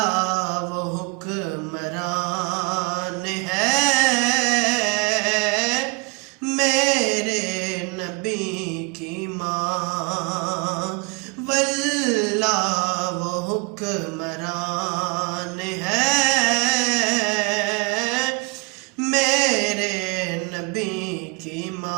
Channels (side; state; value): left; quieter; 29.9 dB